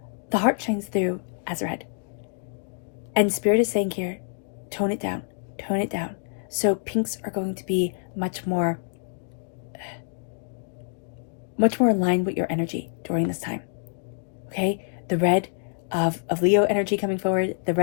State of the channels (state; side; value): silent; right; digital silence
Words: the heart shines through as red. And Spirit is saying here, tone it down, tone it down. So pinks are going to be much more in line with your energy during this time, okay? The red of Leo energy coming forward, the